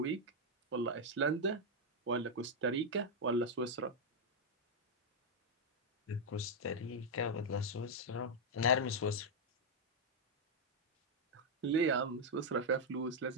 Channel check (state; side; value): normal; both; correlation -0.02